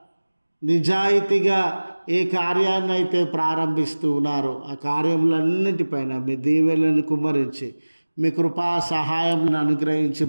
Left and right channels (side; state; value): both; inverted; correlation -1.00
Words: నిజాయితీగా ఏ కార్యాన్ని అయితే ప్రారంభిస్తూ ఉన్నారో ఆ కార్యములన్నిటిపైన మీ దీవెనలను కుమ్మరించి మీ కృపా సహాయం అనుగ్రహించి